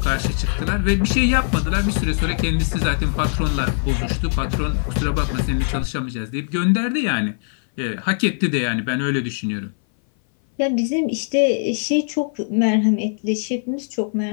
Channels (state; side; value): silent; right; 59 dB below the other